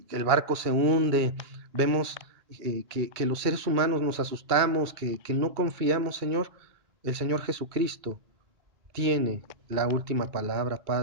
que el barco se hunde, vemos que los seres humanos nos asustamos, que no confiamos, Señor. El Señor Jesucristo tiene la última palabra,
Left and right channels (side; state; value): left; late; 2.3 ms